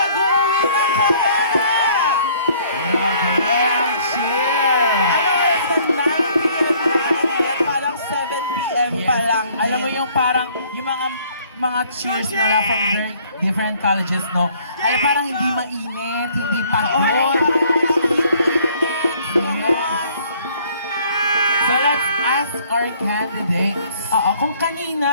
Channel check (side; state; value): both; inverted; correlation -0.59